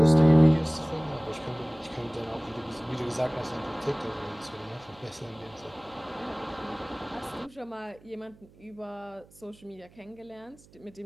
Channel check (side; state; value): right; noise; hum, 26 dB below the sound